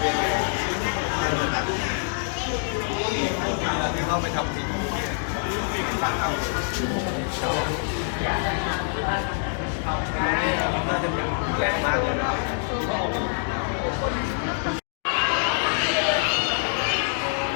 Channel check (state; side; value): silent; right; 61 dB below the other